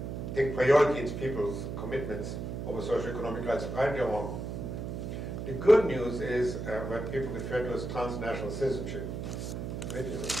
take priority in people's commitments over socioeconomic rights, right or wrong. The good news is what people refer to as transnational citizenship, which is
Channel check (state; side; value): noise; right; hum, 5 dB below the sound